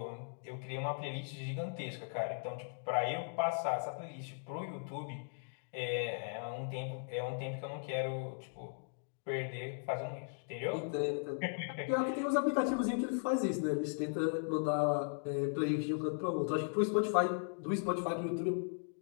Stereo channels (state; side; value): silent; right; digital silence